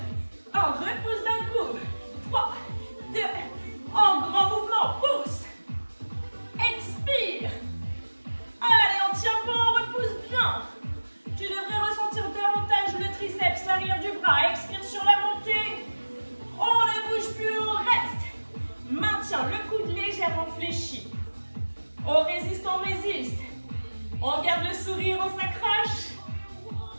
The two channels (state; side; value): inverted; both; correlation -1.00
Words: 1. Repousse d'un coup. 3, 2, en grand mouvement. Pousse. Expire. Allez, on tient bon, on repousse bien. Tu devrais ressentir davantage le triceps, l'arrière du bras. Expire sur la montée. On ne bouge plus, on reste. Maintiens le coude légèrement fléchi. On résiste, on résiste. On garde le sourire, on s'accroche.